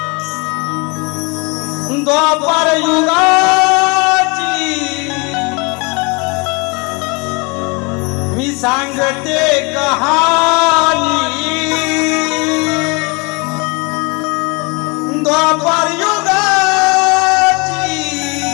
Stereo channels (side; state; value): right; quieter; 29.7 dB